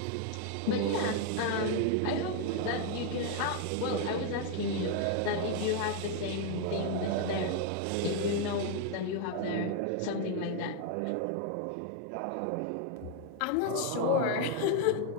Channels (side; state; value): both; different; correlation 0.00